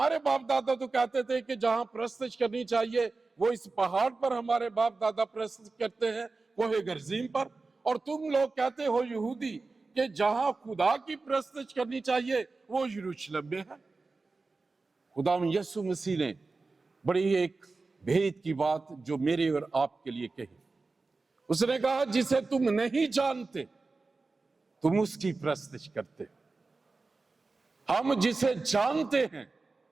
बाप दादा तो कहते थे कि जहां प्रस्तुत करनी चाहिए वो इस पहाड़ पर हमारे बाप दादा प्रस्तुत करते हैं, कोहे गर्जीम पर, और तुम लोग कहते हो यहूदी कि जहां खुदा की प्रस्तुत करनी चाहिए वो यरूशलेम में है। खुदा यीशु मसीह ने बड़ी एक भेद की बात जो मेरे और आपके लिए कही। उसने कहा जिसे तुम नहीं जानते तुम उसकी प्रस्तुत करते हो, हम जिसे जानते हैं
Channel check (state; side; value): quieter; left; 3.8 dB